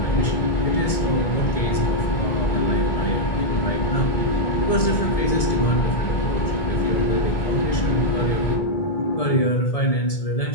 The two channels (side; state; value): right; late; 1.7 ms